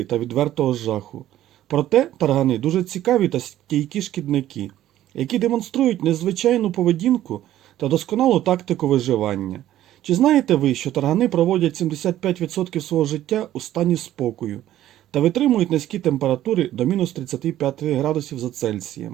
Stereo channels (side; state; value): left; quieter; 13.1 dB